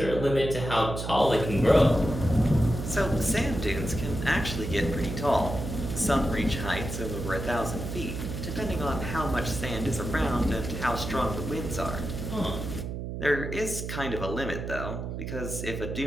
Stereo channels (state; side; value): noise; right; hum, 6 dB below the sound